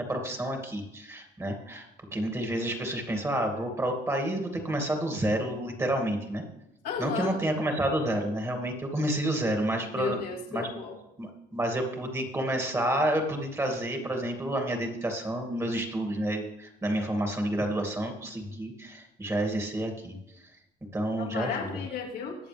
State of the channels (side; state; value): both; normal; correlation 0.66